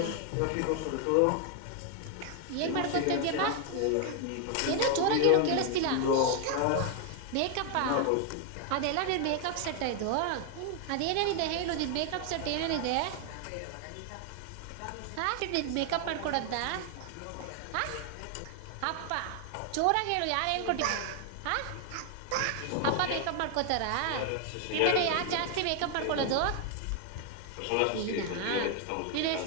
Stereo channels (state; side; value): different; both; correlation 0.00